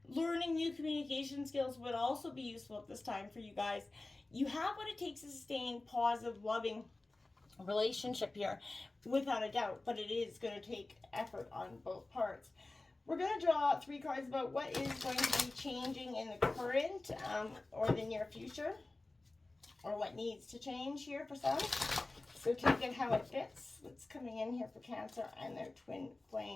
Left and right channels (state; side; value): quieter; right; 3.0 dB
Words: Learning new communication skills would also be useful at this time for you guys. You have what it takes to sustain positive, loving relationship here, without a doubt, but it is going to take effort on both parts. We're going to draw 3 cards about what is going to be changing in the current or the near future, or what needs to change here for some. So take it how it fits. What's coming in here for Cancer and their twin